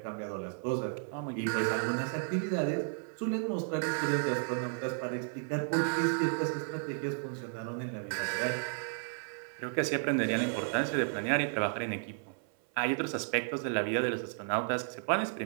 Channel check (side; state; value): left; silent; 56 dB below the other